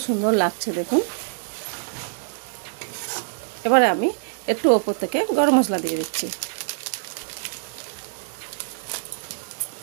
সুন্দর লাগছে দেখুন। এবারে আমি একটু ওপর থেকে গরম মশলা দিয়ে দিচ্ছি।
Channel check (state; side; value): silent; left; digital silence